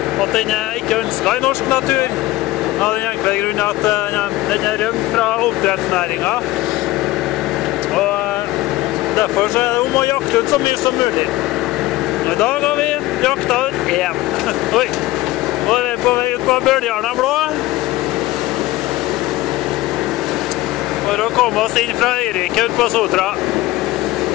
at den er ikke ønsket i norsk natur. Av den enkle grunn at den er rømt fra oppdrettsnæringen. Og derfor så er det om å jakte ut så mye som mulig. I dag har vi jakta ut én. Oi! Og vi er på vei ut på Bøljarna blå. For å komme oss inn fra Øyrike ut på Sotra.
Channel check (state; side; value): quieter; right; 17.9 dB